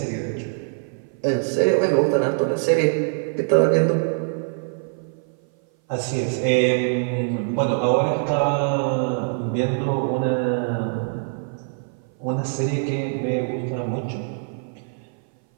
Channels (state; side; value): silent; left; 59 dB below the other